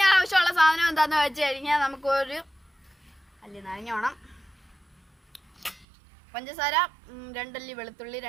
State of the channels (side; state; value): left; drops out; at 5.9 s